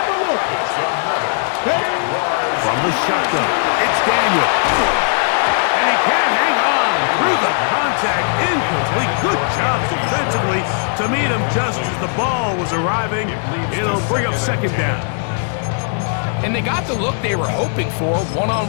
Wolf. From the shotgun, it's Daniel. And he can't hang on through the contact. Incomplete. Good job defensively to meet him just as the ball was arriving. It'll bring up second down. And they got the look they were hoping for,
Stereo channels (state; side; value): silent; right; 58 dB below the other